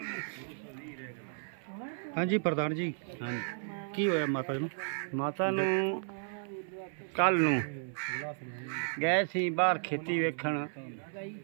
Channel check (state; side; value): silent; left; 55 dB below the other